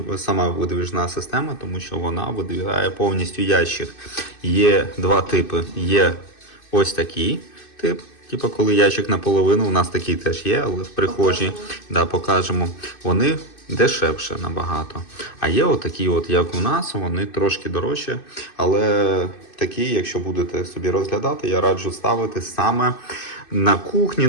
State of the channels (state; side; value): late; right; 2.6 ms